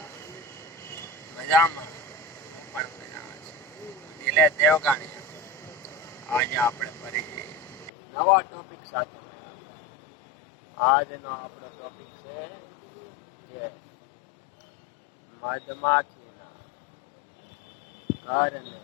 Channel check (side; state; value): right; drops out; at 7.9 s